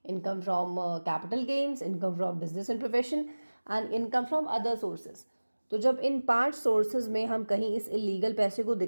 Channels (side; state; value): both; inverted; correlation -1.00